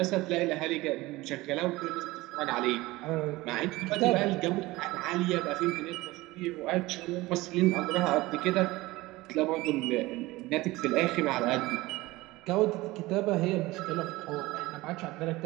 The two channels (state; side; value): quieter; left; 19.8 dB